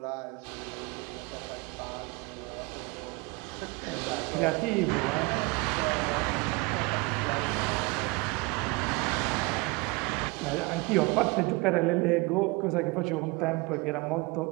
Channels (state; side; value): quieter; left; 26.2 dB